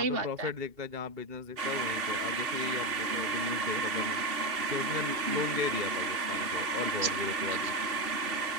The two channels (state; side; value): late; left; 2.8 ms